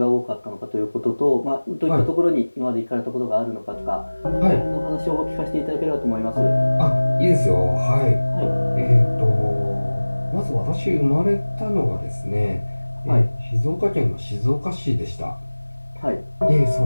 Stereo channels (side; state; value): both; inverted; correlation -1.00